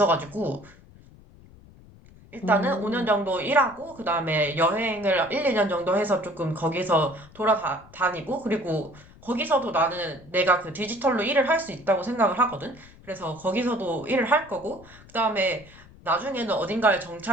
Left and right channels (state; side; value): noise; left; rumble, 23 dB below the sound